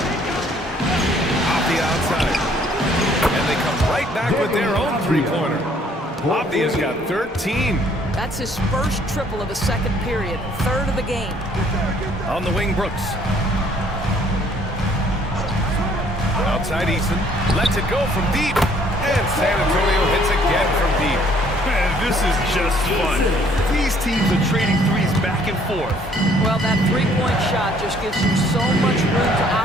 Avdia outside. And they come right back with their own three-pointer. Avdia's got 13. That's his first triple of the second period, 3rd of the game. On the wing, Brooks. Outside Eason. Lets it go from deep. And San Antonio hits again from deep. Man, this is just fun. These teams are trading threes back and forth. Well, that three-point shot just gives you so much room to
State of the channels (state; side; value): normal; both; correlation 0.61